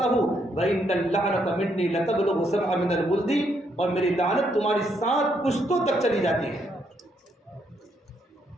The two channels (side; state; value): both; normal; correlation 0.74